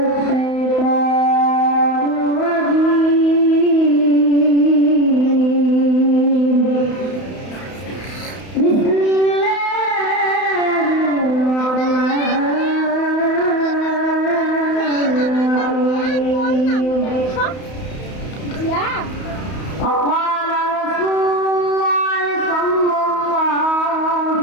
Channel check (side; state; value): right; late; 31 ms